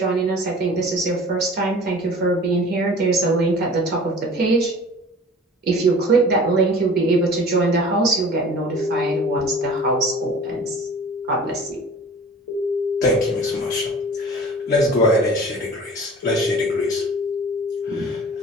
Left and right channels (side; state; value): both; normal; correlation 0.43